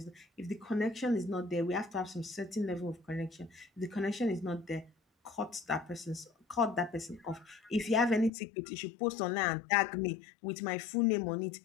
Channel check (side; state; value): right; drops out; at 8.3 s